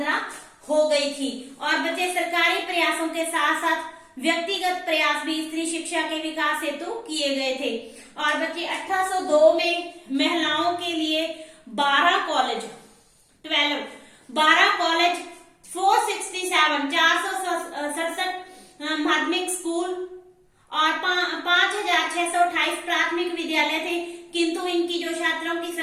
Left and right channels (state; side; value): identical; both; correlation 1.00